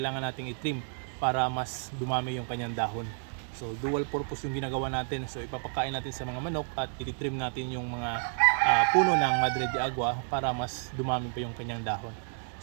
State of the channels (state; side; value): silent; left; 57 dB below the other